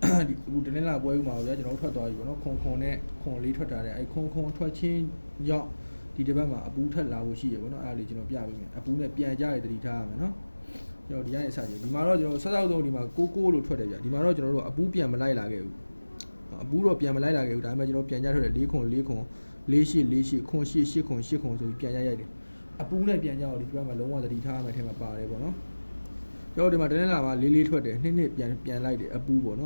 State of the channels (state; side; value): inverted; both; correlation -1.00